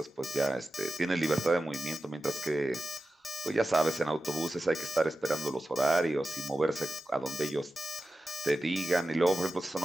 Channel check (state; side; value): normal; both; correlation 0.94